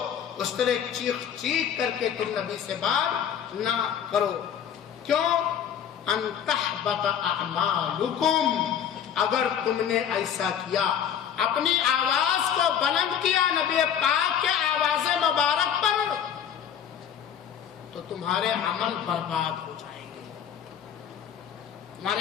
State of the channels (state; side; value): quieter; right; 8.8 dB